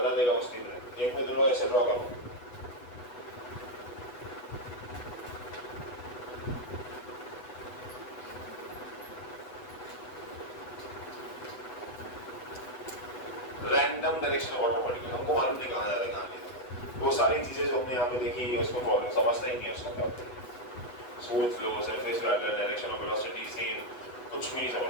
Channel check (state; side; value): late; right; 8.1 ms